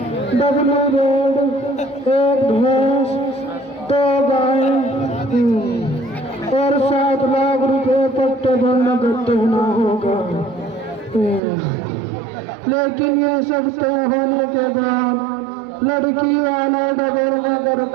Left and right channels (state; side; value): drops out; left; at 11.4 s